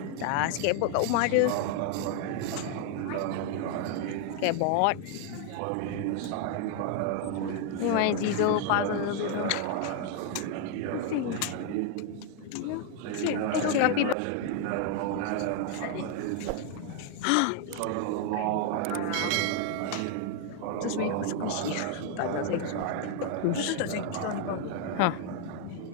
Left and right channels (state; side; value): different; both; correlation 0.00